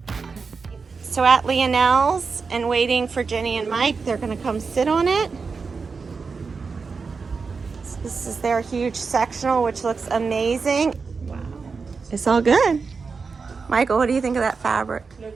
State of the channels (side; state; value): left; quieter; 4.9 dB